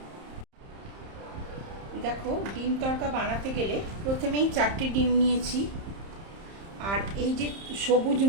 দেখো, ডিম তড়কা বানাতে গেলে প্রথমেই 4টে ডিম নিয়েছি। আর এই যে সবুজ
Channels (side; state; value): left; late; 30 ms